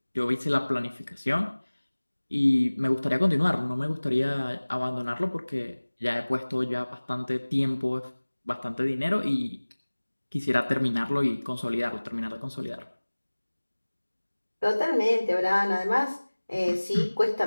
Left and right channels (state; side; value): inverted; both; correlation -1.00